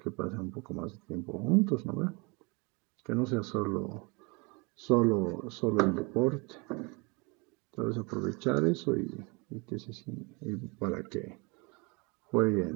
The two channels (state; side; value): quieter; left; 29.3 dB